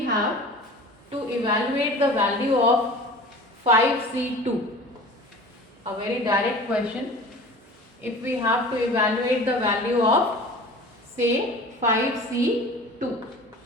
to evaluate the value of 5C2. A very direct question. If we have to evaluate the value of say 5C2,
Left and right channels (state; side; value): normal; both; correlation 0.40